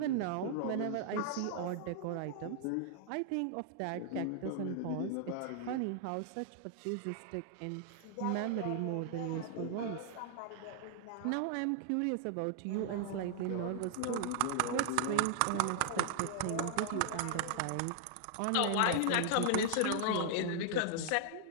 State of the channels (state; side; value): different; both; correlation -0.01